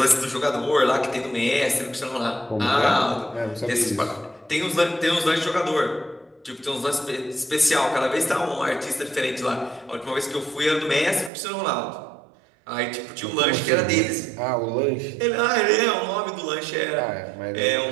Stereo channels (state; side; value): drops out; left; at 11.3 s